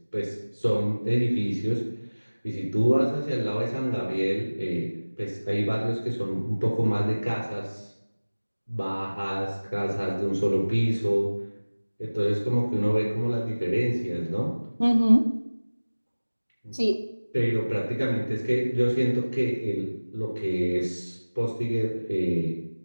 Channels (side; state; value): both; inverted; correlation -1.00